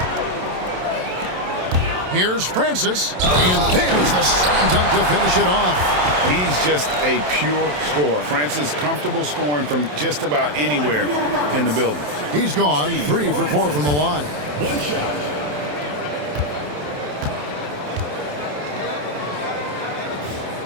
Here's Francis, and there's the slam dunk to finish it off. He's just a pure scorer. Francis comfortable scoring from just about anywhere in the building. He's gone 3 for 4 from the line. One shot.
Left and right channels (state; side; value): late; left; 27 ms